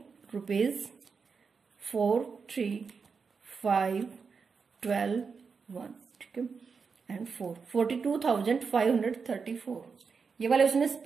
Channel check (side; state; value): left; quieter; 5.4 dB